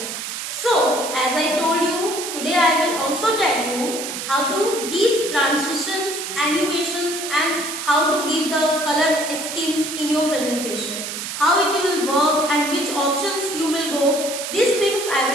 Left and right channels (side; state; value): right; noise; hiss, 6 dB below the sound